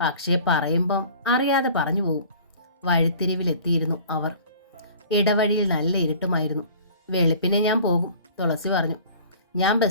പക്ഷേ പറയുമ്പം അറിയാതെ പറഞ്ഞു പോവും. വഴിത്തിരിവിലെത്തിയിരുന്നു അവർ. ഇടവഴിയിൽ നല്ല ഇരുട്ടുമായിരുന്നു. വെളുപ്പിനെ ഞാൻ പോകും, തുളസി പറഞ്ഞു. ഞാൻ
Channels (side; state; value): both; inverted; correlation -0.47